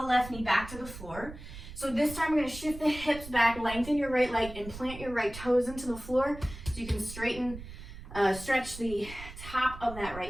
left knee back to the floor. So this time we're going to shift the hips back, lengthen your right leg, and plant your right toes into the floor so you can stretch the top of that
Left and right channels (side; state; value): right; noise; rumble, 13 dB below the sound